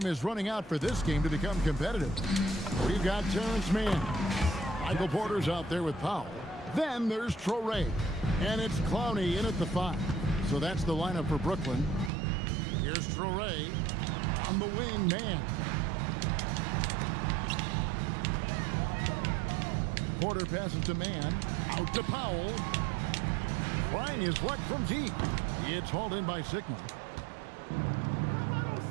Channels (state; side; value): drops out; left; at 12.1 s